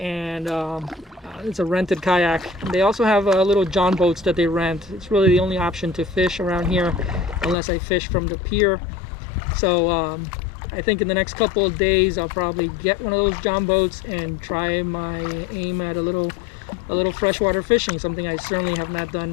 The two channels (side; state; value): right; drops out; at 7.6 s